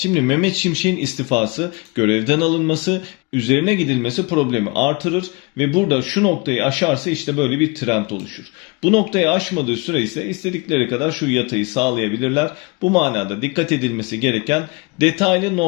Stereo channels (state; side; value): quieter; right; 27.0 dB